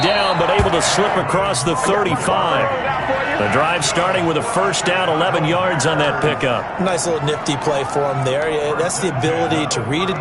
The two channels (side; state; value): both; identical; correlation 1.00